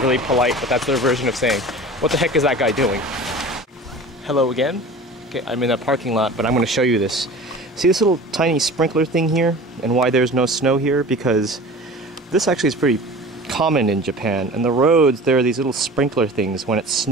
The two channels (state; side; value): normal; both; correlation 0.39